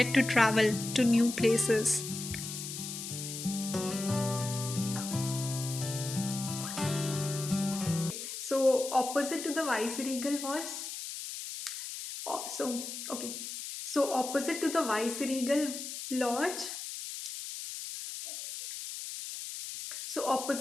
to travel to new places. So opposite to the Viceregal was okay. So opposite to the Viceregal Lodge. So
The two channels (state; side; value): noise; left; hiss, 7 dB below the sound